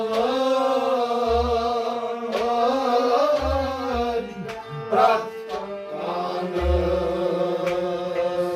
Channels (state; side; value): identical; both; correlation 1.00